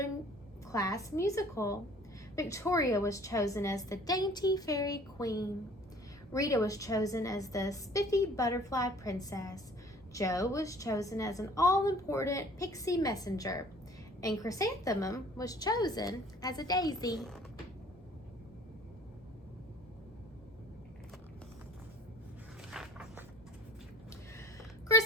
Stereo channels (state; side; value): normal; both; correlation 0.52